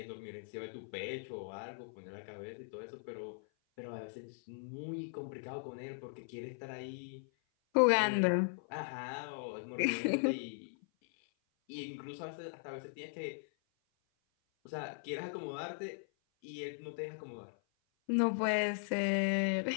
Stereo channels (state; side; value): silent; right; 52 dB below the other